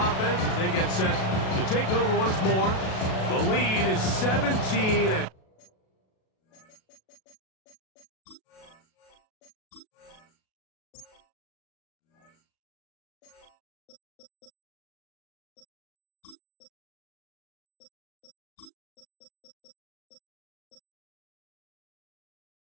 offense as they get set to take over once more. The lead is 17 at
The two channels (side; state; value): right; late; 37 ms